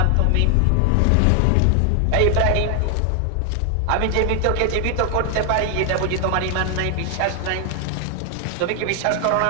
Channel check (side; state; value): both; different; correlation 0.00